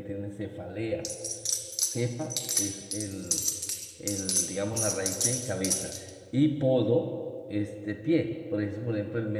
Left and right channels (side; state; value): both; identical; correlation 1.00